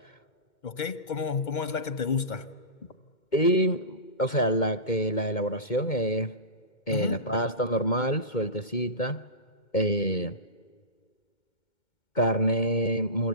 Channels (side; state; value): right; late; 2.2 ms